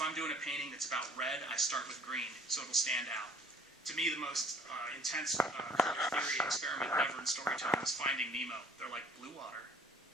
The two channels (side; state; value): both; normal; correlation 0.55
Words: doing a painting that's about red, I start with green, so it'll stand out. To me, the most intense color theory experiment ever in storytelling is Finding Nemo. They're like, blue water,